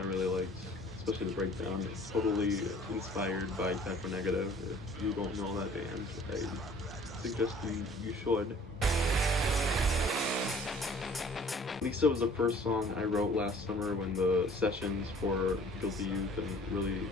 really liked, especially the breakdown. It's totally inspired by Typo Negative. If you don't know that band, I suggest you should. Lisa was the first song I wrote last summer when the sessions for Guilty Youth and really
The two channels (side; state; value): both; normal; correlation 0.52